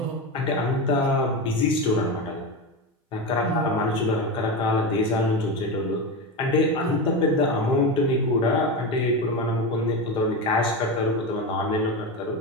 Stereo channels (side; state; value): both; normal; correlation 0.18